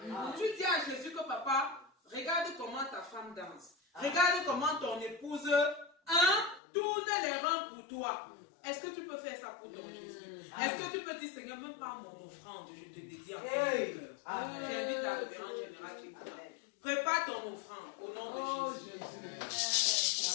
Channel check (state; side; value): drops out; right; at 6.6 s